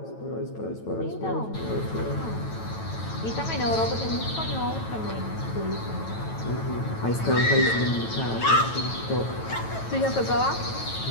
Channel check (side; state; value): right; late; 9.1 ms